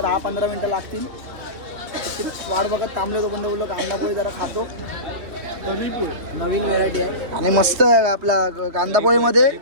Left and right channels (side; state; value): left; late; 3.1 ms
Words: 10-15 मिनिटं लागतील. त्याची वाट बघत थांबले. तो पण बोललो कांदा पोळी जरा खातो. नवीन व्हेरायटी आहे आणि मस्त आहे आपला कांदा पोळीमध्ये.